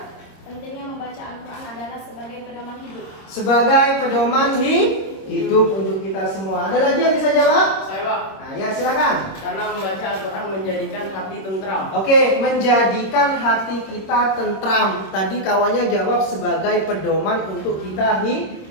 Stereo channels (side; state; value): right; late; 26 ms